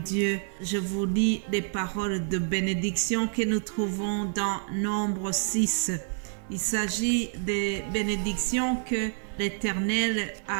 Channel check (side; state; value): left; silent; digital silence